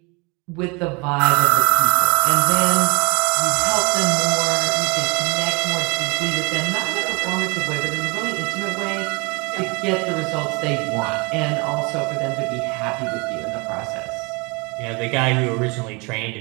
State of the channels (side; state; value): left; quieter; 28.8 dB